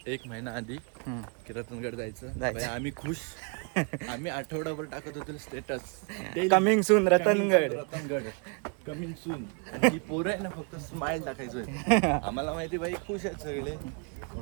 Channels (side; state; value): left; quieter; 36.5 dB